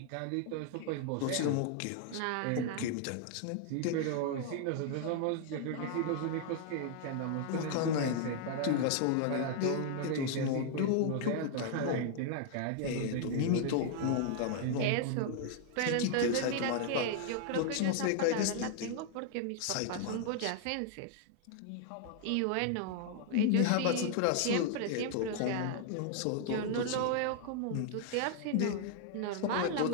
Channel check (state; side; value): different; both; correlation 0.00